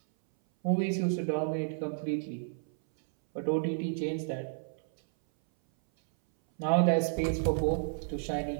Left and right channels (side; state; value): left; silent; 57 dB below the other